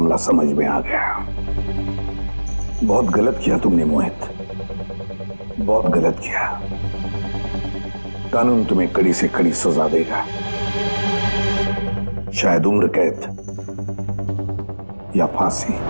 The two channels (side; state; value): both; inverted; correlation -1.00